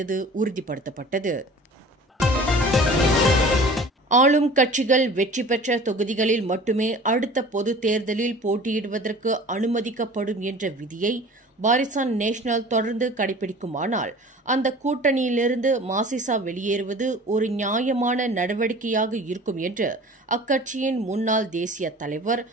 உறுதிப்படுத்தப்பட்டது. ஆளும் கட்சிகள் வெற்றி பெற்ற தொகுதிகளில் மட்டுமே அடுத்த பொதுத் தேர்தலில் போட்டியிடுவதற்கு அனுமதிக்கப்படும் என்ற விதியை பாரிசான் நேஷனல் தொடர்ந்து கடைபிடிக்குமானால் அந்த கூட்டணியிலிருந்து மாசிசா வெளியேறுவது ஒரு நியாயமான நடவடிக்கையாக இருக்கும் என்று அக்கட்சியின் முன்னாள் தேசிய தலைவர்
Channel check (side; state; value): both; normal; correlation 0.43